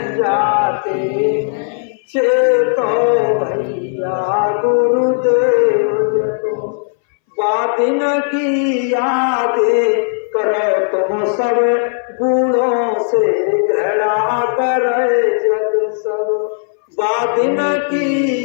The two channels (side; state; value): right; silent; 65 dB below the other